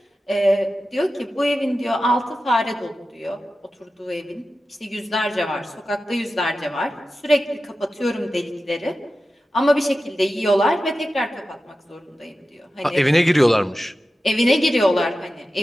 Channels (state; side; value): normal; both; correlation 0.93